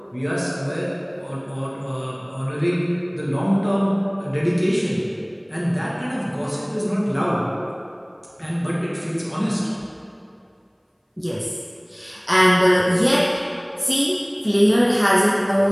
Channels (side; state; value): both; identical; correlation 1.00